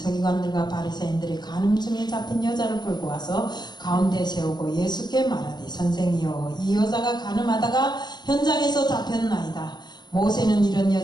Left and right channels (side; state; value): right; late; 0.21 ms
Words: 바리새인들이 간음 중에 잡힌 여자를 끌고 와서 가운데 세우고 예수께 말하되 선생이여 이 여자가 간음하다가 현장에서 잡혔나이다. 모세는 이런